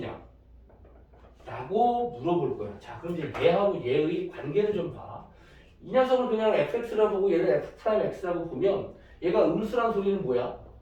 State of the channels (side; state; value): both; identical; correlation 1.00